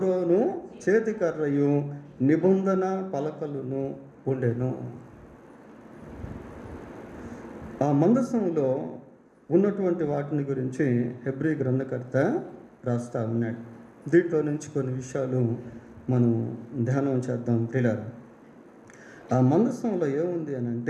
చేతికర్రయు, నిబంధన పలకలను ఉండెను. ఆ మందసంలో ఉన్నటువంటి వాటిని గురించి హెబ్రీ గ్రంథకర్త రాస్తా ఉన్నాడు. దీంట్లో నుంచి కొన్ని విషయాలు మనం ధ్యానం చేద్దాం ప్రియులారా. ఆ మందసంలో ఏముంది అని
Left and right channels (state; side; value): identical; both; correlation 1.00